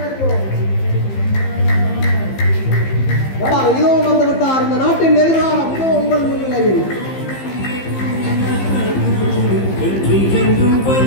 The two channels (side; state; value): right; late; 15 ms